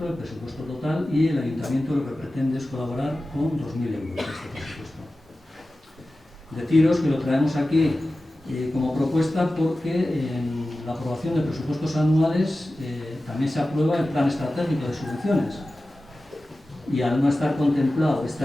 el presupuesto total, y el ayuntamiento lo que pretende es colaborar con 2.000 euros de este presupuesto. Deciros que lo traemos aquí como propuesta porque en la aprobación de presupuestos anuales también se aprueba el plan estratégico de subvenciones y al no estar contemplado este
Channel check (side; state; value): both; normal; correlation 0.95